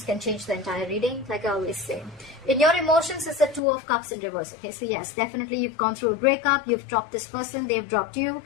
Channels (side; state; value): right; drops out; at 3.6 s